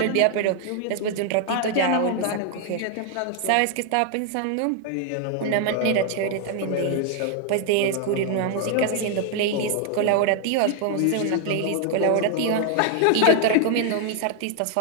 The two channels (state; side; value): different; both; correlation 0.00